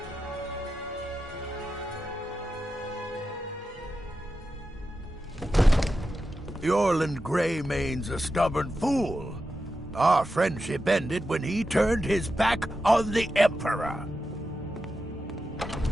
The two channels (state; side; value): normal; both; correlation 0.90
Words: The Orland Greymane's a stubborn fool. Our friendship ended when he turned his back on the Emperor.